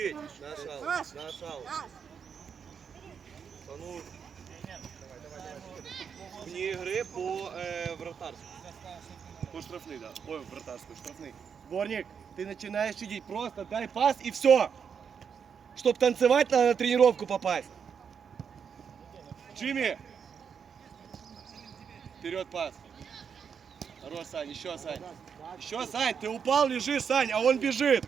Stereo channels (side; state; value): left; quieter; 6.9 dB